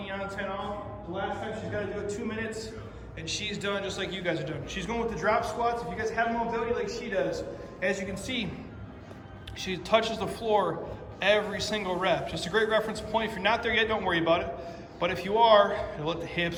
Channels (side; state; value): both; identical; correlation 1.00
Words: on, 10 off. The last time she's gotta do it 2 minutes, and she's done just like you guys are doing. She's going with the drop squats. If you guys have mobility like she does, as you can see, she touches the floor every single rep. Just a great reference point. If you're not there yet, don't worry about it. But if you are, you'll let the